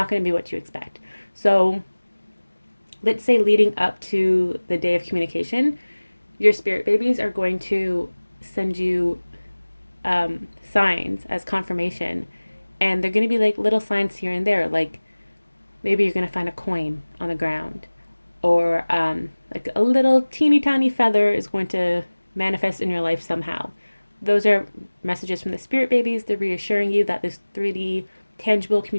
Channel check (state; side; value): inverted; both; correlation -1.00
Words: going to be what you expect. So let's say leading up to the day of communication, your spirit babies are going to send you signs as confirmation, And they're going to be like little signs here and there, like maybe you're going to find a coin on the ground, or like a little teeny tiny feather is going to manifest in your life somehow. Those are messages from the spirit babies. They're reassuring you that this 3D tangible